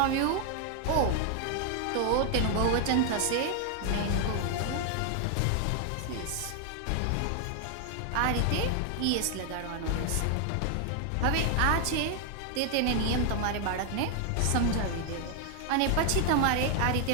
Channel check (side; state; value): both; different; correlation 0.00